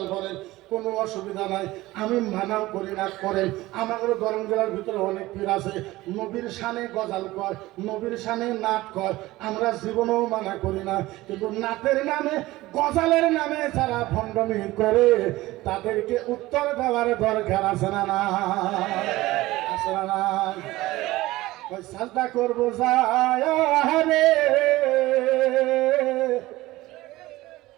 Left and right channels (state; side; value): quieter; left; 18.2 dB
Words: করেন, কোনো অসুবিধা নাই, আমি মানাও করি না করেন। আমাদের গরম জেলার ভিতরে অনেক পীর আছে নবীর সামনে গজাল কয়, নবীর সামনে নাট কয়, আমরা জীবনেও মানা করি না। কিন্তু নাটের নামে গজালের নামে যারা ভণ্ডামি করে তাদেরকে উত্তর দেওয়ার দরকার আছে না না? আছে না না? ওই সাজদা করবো যায়